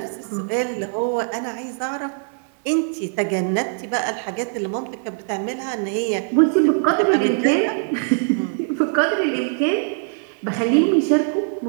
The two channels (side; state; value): left; silent; digital silence